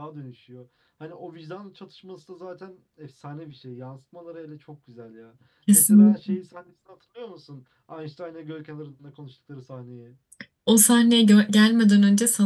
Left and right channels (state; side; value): identical; both; correlation 1.00